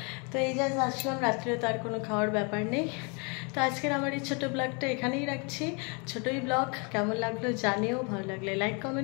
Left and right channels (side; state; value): right; quieter; 33.9 dB